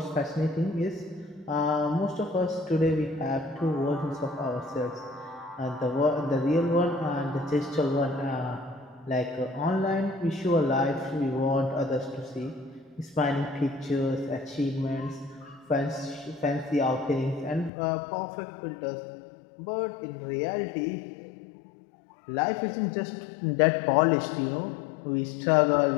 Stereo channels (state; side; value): drops out; right; at 17.7 s